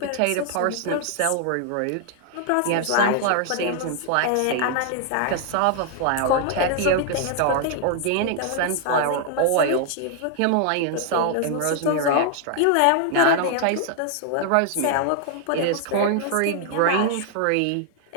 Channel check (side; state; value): both; different; correlation 0.00